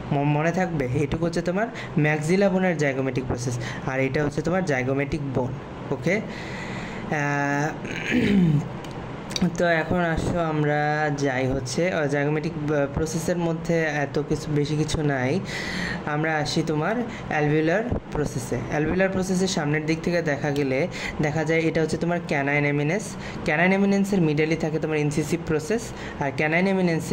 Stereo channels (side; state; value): both; identical; correlation 1.00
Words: মনে থাকবে, এইটুকু হচ্ছে তোমার ম্যাক্সিলা বোনের জাইগোমেটিক প্রসেস, আর এটা হচ্ছে তোমার জাইগোমেটিক বোন। ওকে, তো এখন আসো আমরা যাই হচ্ছে জাইগোমেটিক প্রসেসের মধ্যে এত কিছু বেশি কিছু নাই, আমরা আসি তোমার অ্যালভিউলার প্রসেসে। অ্যালভিউলার প্রসেসের সামনের দিক থেকে দেখা যায় এটা হচ্ছে তোমার ক্যানাইন এমিনেন্সের মিডলে থাকে তোমার ইনসিসিভ প্রসেস, আর ক্যানাইন